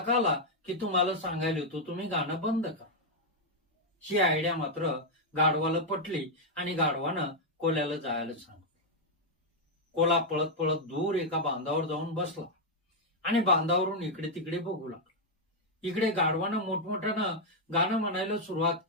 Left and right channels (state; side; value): normal; both; correlation -0.01